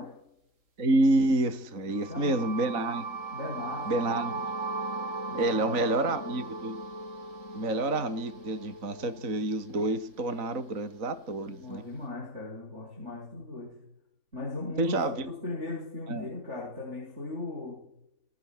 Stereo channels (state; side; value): late; left; 3.5 ms